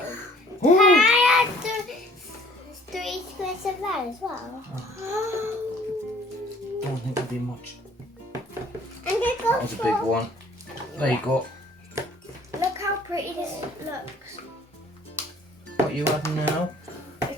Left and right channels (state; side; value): normal; both; correlation 0.55